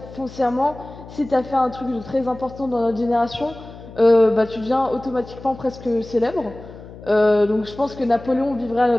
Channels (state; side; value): noise; left; hum, 17 dB below the sound